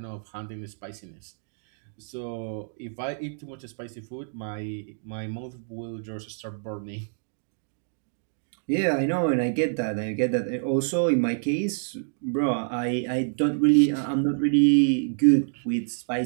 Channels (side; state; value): left; silent; digital silence